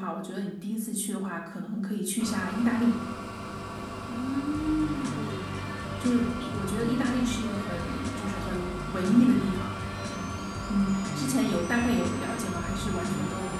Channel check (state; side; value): identical; both; correlation 1.00